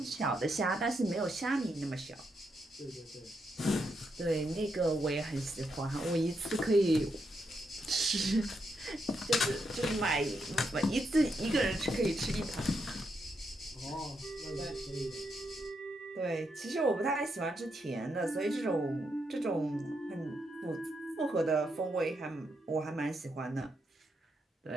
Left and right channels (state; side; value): normal; both; correlation 0.81